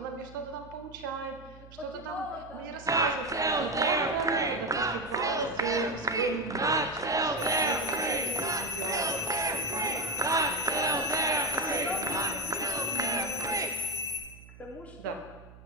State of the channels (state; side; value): noise; right; hum, 20 dB below the sound